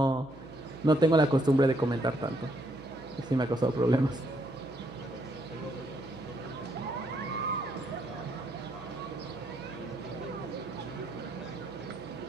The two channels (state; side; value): noise; right; hum, 20 dB below the sound